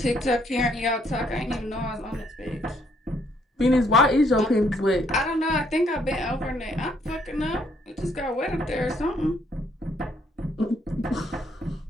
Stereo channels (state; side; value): normal; both; correlation 0.69